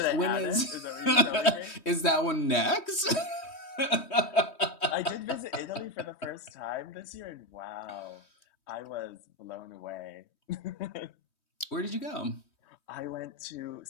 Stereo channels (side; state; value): right; late; 3.2 ms